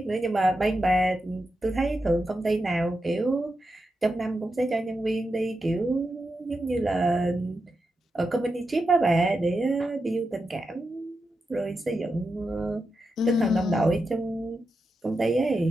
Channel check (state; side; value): normal; both; correlation 0.88